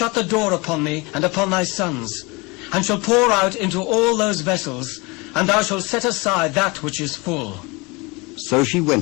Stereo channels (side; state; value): right; quieter; 26.3 dB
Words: the door upon thee and upon thy sons, and shalt pour out into all those vessels, and thou shalt set aside that which is full. So she